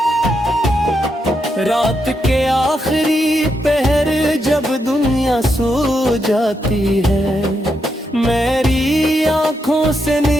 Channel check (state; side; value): normal; both; correlation 0.82